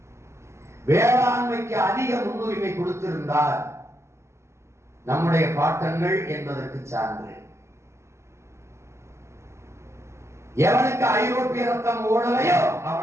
வேளாண்மைக்கு அதிக முன்னுரிமை கொடுத்திருந்தார் நம்முடைய பாட்டங்கள் என்பதற்கு சான்று. எவனுக்கு ஐரோப்பிய ரத்தம் ஓடலையோ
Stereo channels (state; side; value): late; left; 0.13 ms